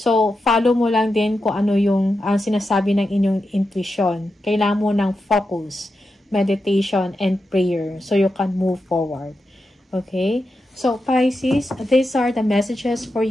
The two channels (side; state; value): both; normal; correlation 0.88